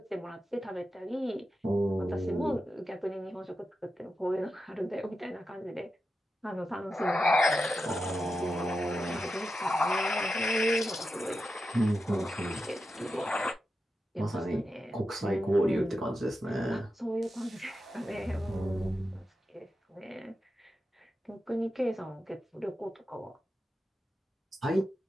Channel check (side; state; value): both; normal; correlation 0.90